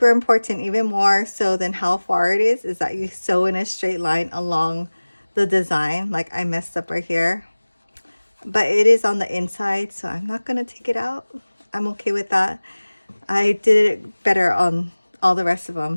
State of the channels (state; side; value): inverted; both; correlation -1.00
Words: important, even more so than how far it is that you sew in a straight line along the design. Like, I messed up right here, but it is on the inside, so I'm not going to take it out. I'm okay with that. I did it better on all the rest of